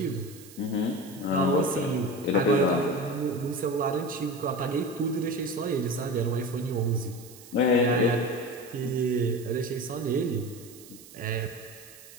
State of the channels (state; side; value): noise; right; hiss, 19 dB below the sound